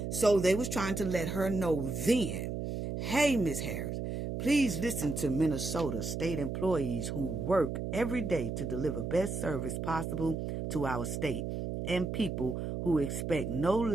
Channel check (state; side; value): noise; right; hum, 4 dB below the sound